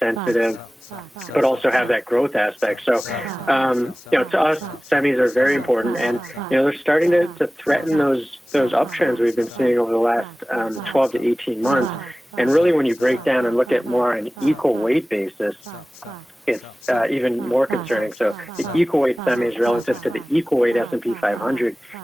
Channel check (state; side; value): normal; both; correlation 0.97